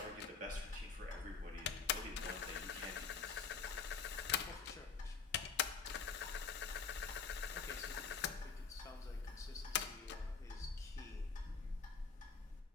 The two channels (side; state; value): right; quieter; 5.7 dB